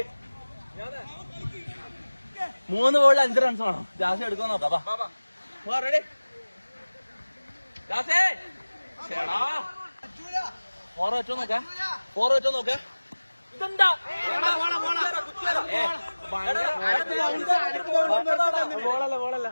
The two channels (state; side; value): inverted; both; correlation -1.00